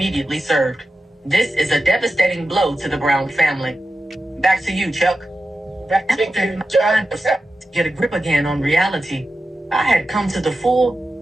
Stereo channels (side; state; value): both; normal; correlation 0.92